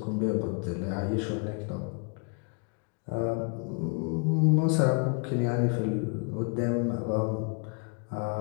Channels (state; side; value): quieter; right; 34.5 dB